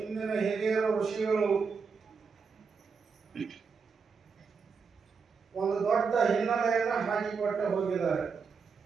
ಹಿರಿಯರ ಋಷಿಗಳು ಒಂದು ದೊಡ್ಡ ಹಿನ್ನೆಲೆಯನ್ನು ಹಾಕಿಕೊಟ್ಟು ಹೋಗಿದ್ದಾರೆ.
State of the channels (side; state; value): left; quieter; 5.3 dB